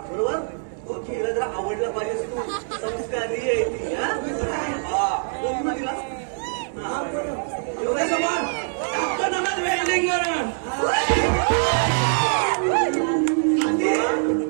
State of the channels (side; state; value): left; silent; 63 dB below the other